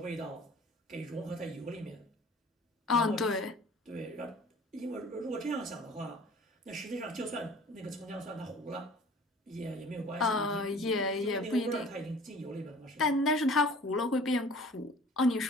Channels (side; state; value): both; normal; correlation 0.47